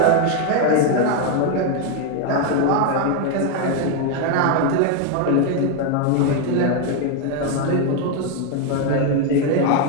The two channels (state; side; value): different; both; correlation 0.01